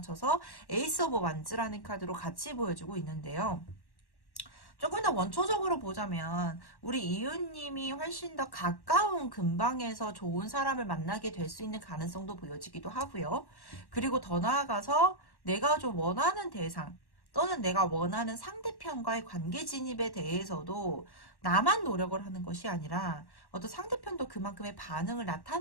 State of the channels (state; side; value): late; right; 1.1 ms